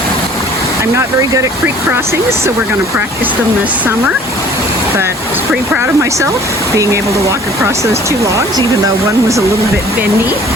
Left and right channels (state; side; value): normal; both; correlation 0.52